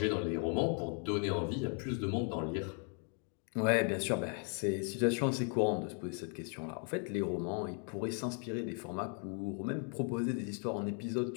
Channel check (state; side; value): quieter; right; 40.0 dB